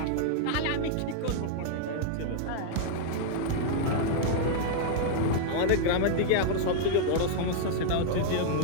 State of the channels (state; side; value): different; both; correlation -0.01